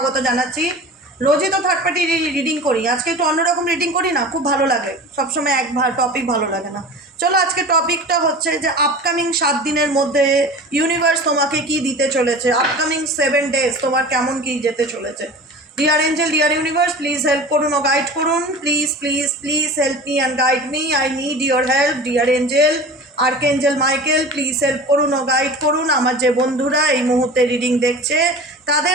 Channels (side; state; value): both; normal; correlation 0.36